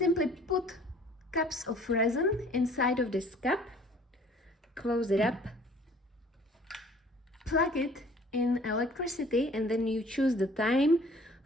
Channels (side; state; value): both; normal; correlation 0.53